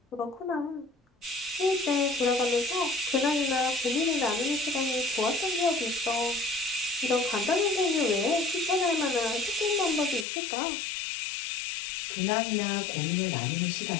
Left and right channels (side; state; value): right; drops out; at 10.2 s